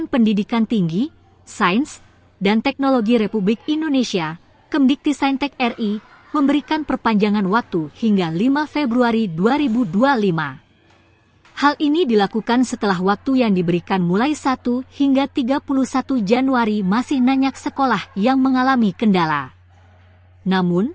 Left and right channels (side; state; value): both; identical; correlation 1.00